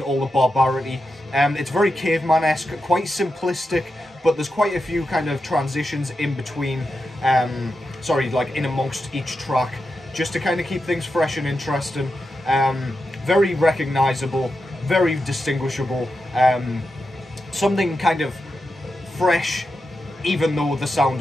the barbarity. It's very caveman-esque, quite simplistic, but there's quite a few kind of transitions in between, like in amongst each track, just to kind of keep things fresh and interesting. Very recognisable, very distinguishable, something kind of fresh, even though the sound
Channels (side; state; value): both; normal; correlation 0.88